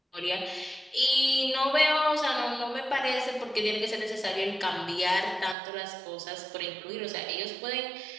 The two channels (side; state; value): left; drops out; at 5.6 s